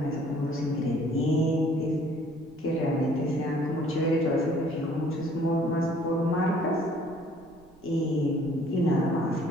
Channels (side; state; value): right; noise; rumble, 29 dB below the sound